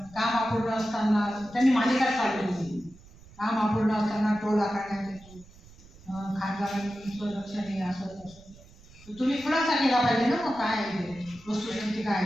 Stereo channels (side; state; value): right; noise; rumble, 23 dB below the sound